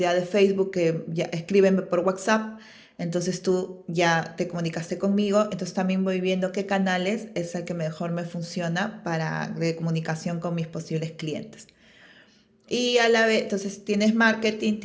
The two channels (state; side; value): identical; both; correlation 1.00